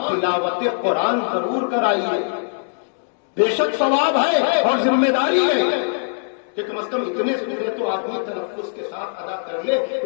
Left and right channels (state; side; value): silent; right; digital silence